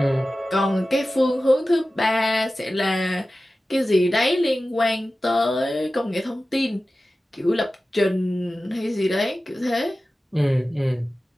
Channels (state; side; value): normal; both; correlation 0.95